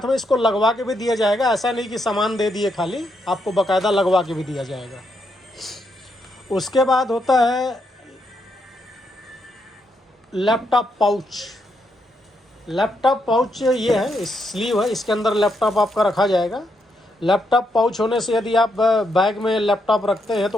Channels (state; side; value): normal; both; correlation 0.79